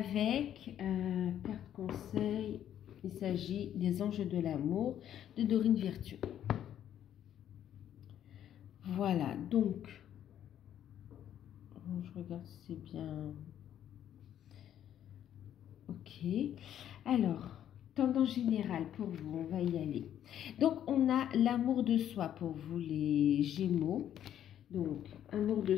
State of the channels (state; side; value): quieter; right; 10.6 dB